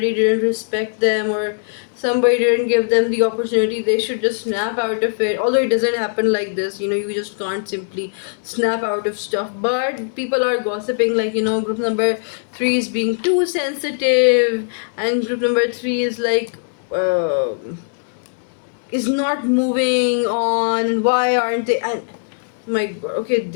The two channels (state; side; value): silent; right; digital silence